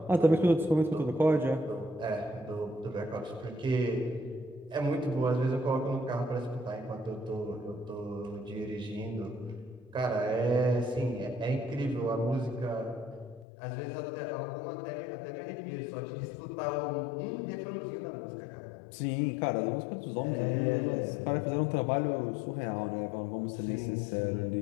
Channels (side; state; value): right; drops out; at 13.5 s